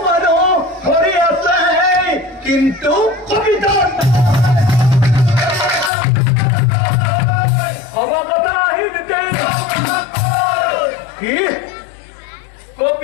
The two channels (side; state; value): right; drops out; at 5.9 s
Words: মানুষ হরি আছে কিন্তু কপিত অবগতা আহিতে কি